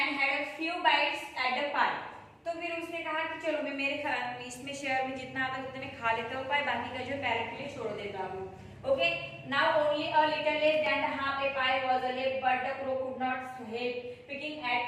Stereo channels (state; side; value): identical; both; correlation 1.00